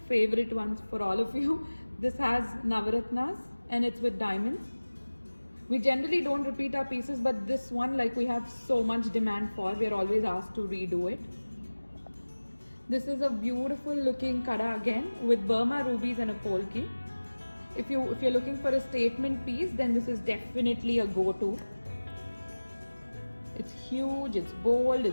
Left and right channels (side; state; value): both; inverted; correlation -1.00